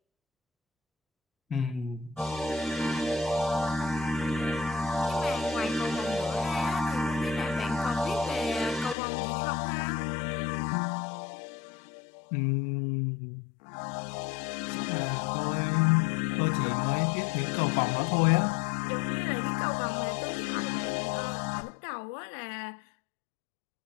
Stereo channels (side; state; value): right; drops out; at 9.0 s